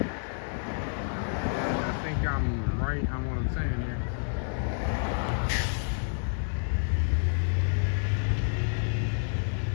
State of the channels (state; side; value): silent; right; digital silence